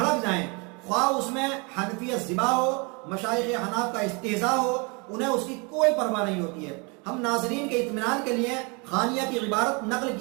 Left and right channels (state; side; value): quieter; left; 31.2 dB